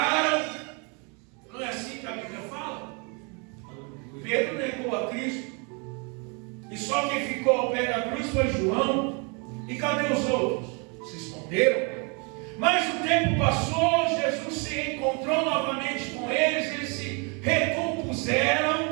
Não é assim que a Bíblia fala? Pedro negou a Cristo. E só quem ficou ao pé da cruz foi João. E cadê os outros? Se esconderam. Mas o tempo passou, Jesus se encontrou novamente com eles, eles se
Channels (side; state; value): left; quieter; 33.7 dB